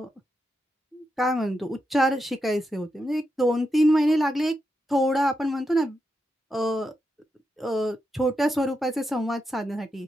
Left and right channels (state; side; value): normal; both; correlation 0.85